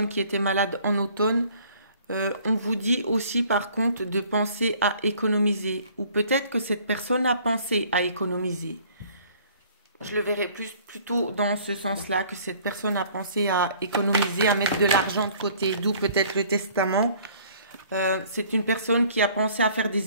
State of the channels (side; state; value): both; inverted; correlation -0.55